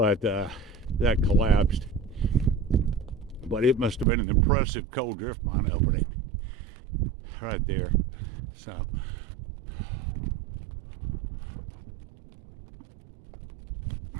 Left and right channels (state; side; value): drops out; left; at 4.0 s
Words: that collapsed. But it must have been an impressive coal drift mine opening right there. So